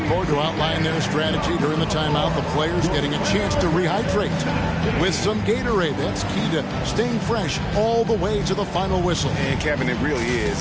to outline their strategy during the timeout, the players getting a chance to rehydrate with some Gatorade. That's key to staying fresh all the way to the final whistle. And Kevin, it really is.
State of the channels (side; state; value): both; identical; correlation 1.00